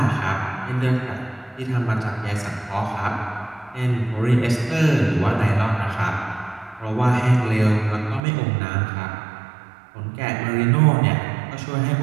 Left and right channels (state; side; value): drops out; left; at 8.2 s